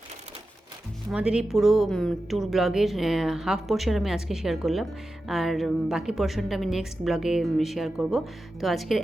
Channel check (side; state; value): both; normal; correlation 0.92